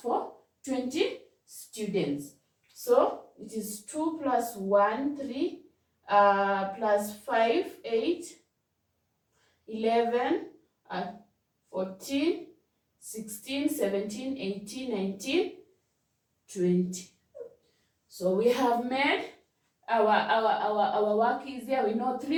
20 students. So it is 2 plus 1, 3, plus 5, 8, 11, 14, 16, 17, 18, 19, 20. So we have made our work easier. We know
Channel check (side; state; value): both; identical; correlation 1.00